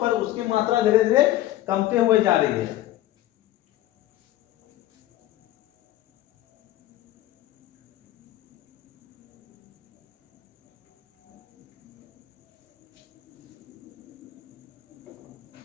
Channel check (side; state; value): right; quieter; 14.9 dB